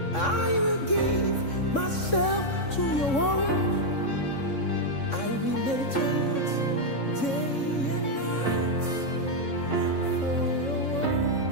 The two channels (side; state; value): right; late; 3.6 ms